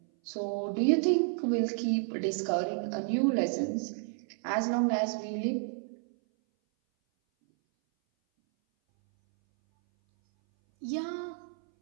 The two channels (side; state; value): left; silent; 57 dB below the other